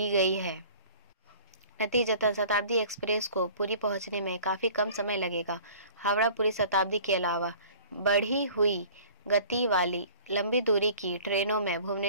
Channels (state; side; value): inverted; both; correlation -0.47